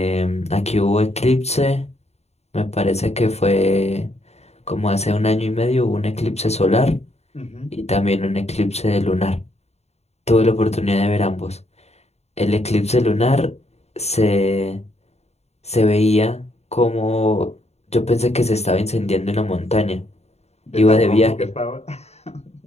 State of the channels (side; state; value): right; late; 0.31 ms